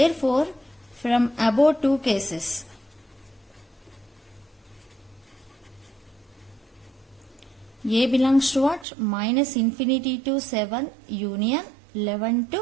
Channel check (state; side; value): drops out; left; at 8.8 s